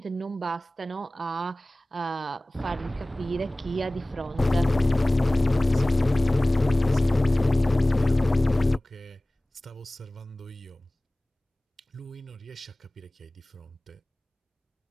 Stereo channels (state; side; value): normal; both; correlation 0.98